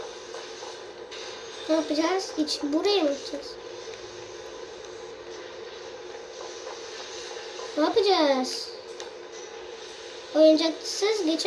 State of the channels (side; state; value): both; identical; correlation 1.00